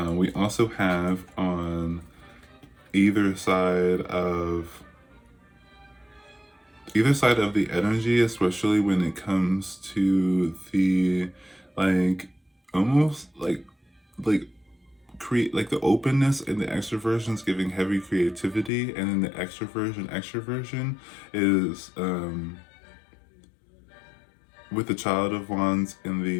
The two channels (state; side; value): drops out; right; at 18.7 s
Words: we also have on either side of the energy, especially when it comes to the like almost like create like the openness and the extroversion is giving heavy creativity, and then the extroversion is with the Child of Wands and